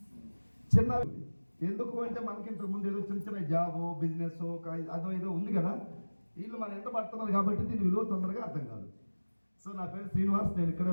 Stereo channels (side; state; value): both; inverted; correlation -1.00